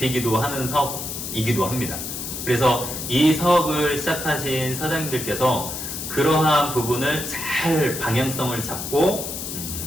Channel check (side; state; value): left; noise; hiss, 6 dB below the sound